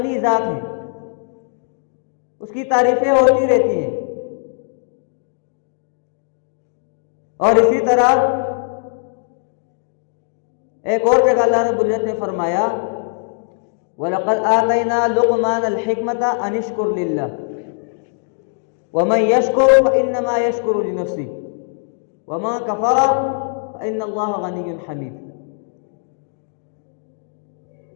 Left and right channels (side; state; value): right; silent; 66 dB below the other